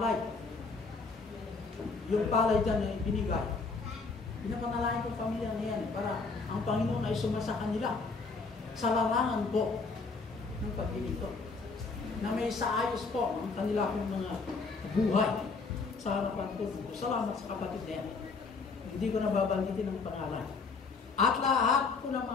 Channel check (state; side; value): quieter; right; 4.3 dB